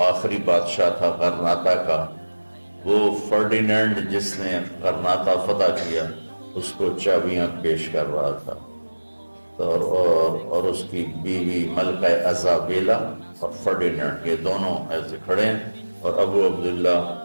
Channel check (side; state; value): both; inverted; correlation -1.00